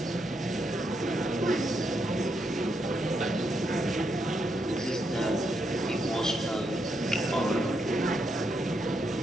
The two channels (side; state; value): both; normal; correlation 0.80